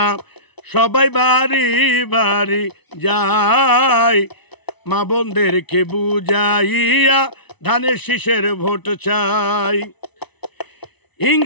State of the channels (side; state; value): right; late; 1.0 ms